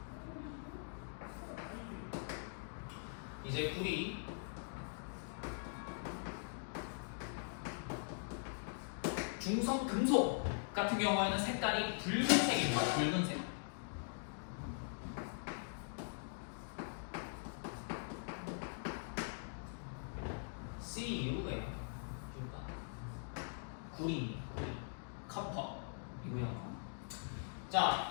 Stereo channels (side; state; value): right; silent; digital silence